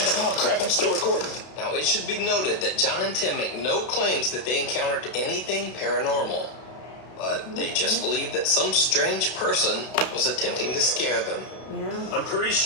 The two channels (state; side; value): late; right; 32 ms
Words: Oh, crap, I'm still recording. Now, it should be noted that John and Tim make no claims that they encountered anything paranormal. But they just believe that some strange person was attempting to scare them. Yeah. I'm pretty